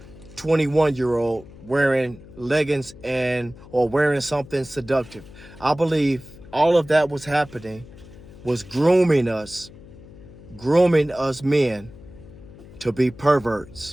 21-year-old wearing leggings and or wearing something seductive. I believe all of that was happening was grooming us men to be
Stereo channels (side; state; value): left; noise; hum, 19 dB below the sound